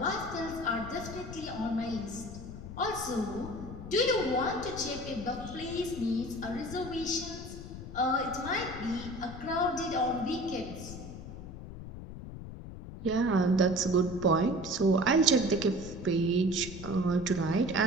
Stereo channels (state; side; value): noise; left; rumble, 11 dB below the sound